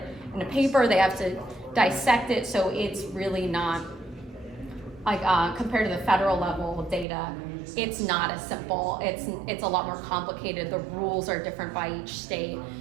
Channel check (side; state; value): left; drops out; at 7.1 s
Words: in a paper, they have to dissect it, so it's really not like compared to the federal level data, it's not as simple. It's a lot more complicated. The rules are different by each state.